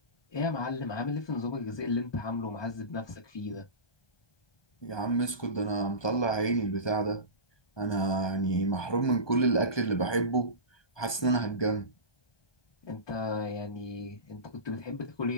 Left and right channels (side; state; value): right; late; 1.2 ms